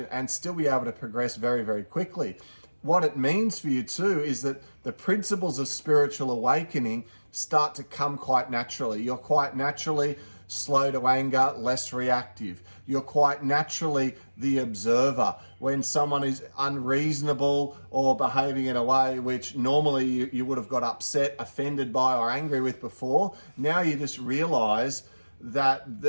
and still be able to progress very, very quickly. What it means for you too is that the principles of spiritual awakening start to come quite naturally. You're quite naturally slow to anger, less reactive. You're quite naturally the observer. When someone is unreasonable or behaving in a way which normally you would have got upset, offended by, or angry with before, now you just realize that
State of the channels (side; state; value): both; inverted; correlation -1.00